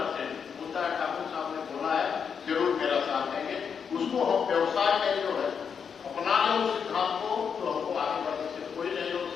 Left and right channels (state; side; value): quieter; right; 6.7 dB